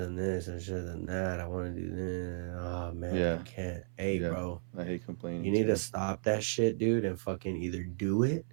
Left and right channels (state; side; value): silent; left; 55 dB below the other